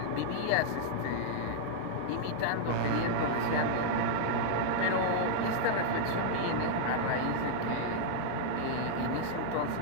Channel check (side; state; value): both; different; correlation -0.01